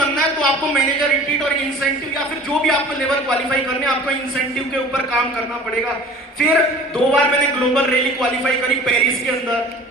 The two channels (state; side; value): normal; both; correlation 0.44